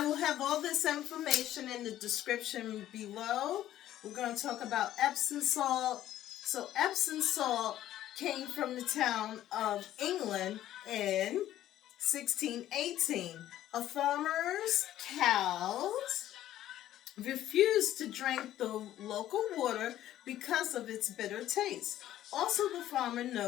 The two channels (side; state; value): right; quieter; 12.9 dB